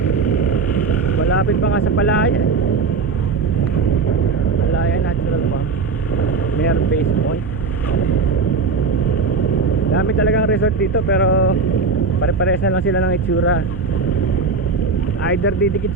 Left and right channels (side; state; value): left; quieter; 4.6 dB